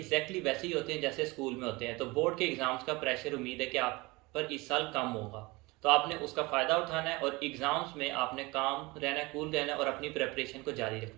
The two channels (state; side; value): quieter; left; 23.6 dB